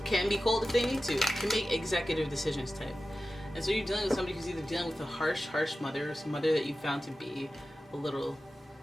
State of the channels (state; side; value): normal; both; correlation 0.94